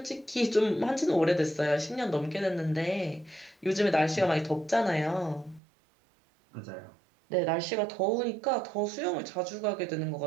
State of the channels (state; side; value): drops out; left; at 5.6 s